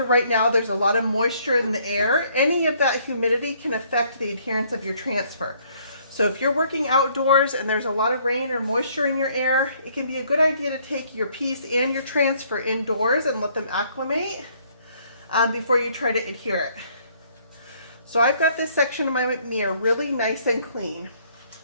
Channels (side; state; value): both; inverted; correlation -0.64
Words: right now, there's a lot of moisture in the air. Any of that humidity can affect the adherence of your transfer. So if you're working outdoors and there's a lot of rain or moisture in your air, it can be a good idea to take your piece and your transfer indoors and let them acclimate before you try to adhere it. So I've got this section of my mirror really nice and clean.